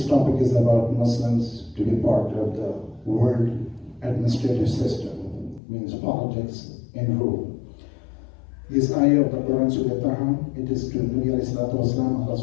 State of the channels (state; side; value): drops out; right; at 5.6 s